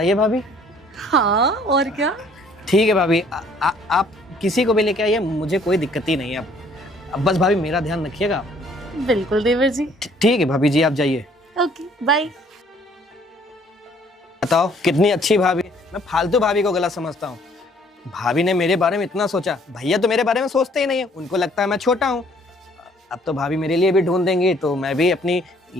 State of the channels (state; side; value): normal; both; correlation 0.60